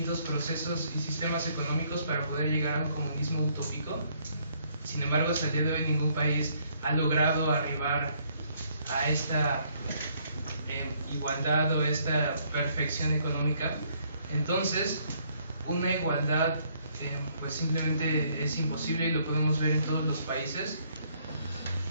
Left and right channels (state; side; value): inverted; both; correlation -0.67